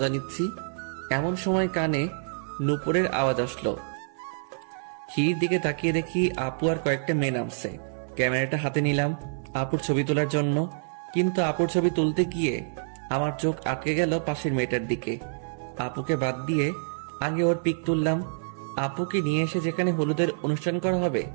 নিচ্ছি, এমন সময় কানে নুপুরের আওয়াজ আসলো। সিঁড়ির দিকে তাকিয়ে দেখি আপু আর কয়েকটা মেয়ে নামছে। ক্যামেরাটা হাতে নিলাম আপুর ছবি তোলার জন্য, কিন্তু আপুর ছবি তুলতে গিয়ে আমার চোখ আটকে গেল পাশের মেয়েটার দিকে। আপুকে বাদ দিয়ে আগে ওর পিক তুললাম। আপুকে নিয়ে এসে যেখানে হলুদের অনুষ্ঠান করা হবে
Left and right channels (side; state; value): left; silent; 58 dB below the other